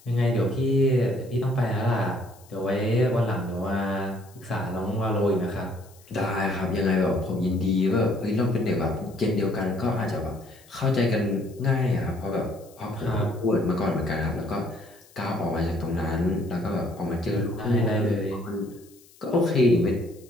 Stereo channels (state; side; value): noise; left; hiss, 26 dB below the sound